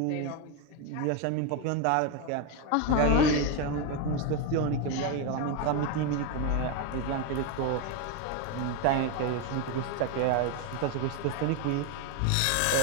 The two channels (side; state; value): both; different; correlation 0.02